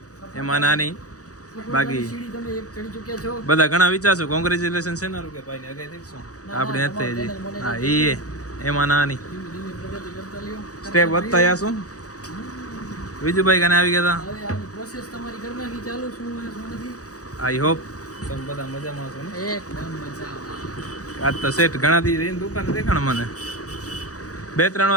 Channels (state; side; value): late; right; 0.66 ms